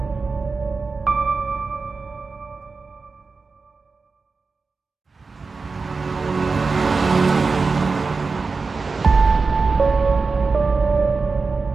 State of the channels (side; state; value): left; quieter; 4.3 dB